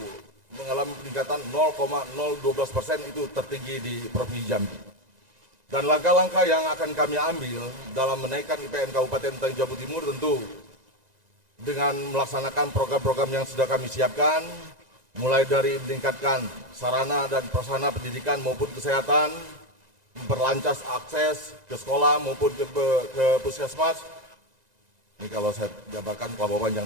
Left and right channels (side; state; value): left; late; 1.9 ms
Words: mengalami peningkatan 0,012%, itu tertinggi di Provinsi Jambi. Dan langkah-langkah yang akan kami ambil dalam menaikkan IPM Kabupaten Tanjung Jabung Timur tentu dengan melaksanakan program-program yang sudah kami siapkan, mulai dari meningkatkan sarana dan prasarana pendidikan maupun kesehatan, memperlancar akses ke sekolah maupun ke puskesmas. Ini kalau saya jabarkan pelabuhan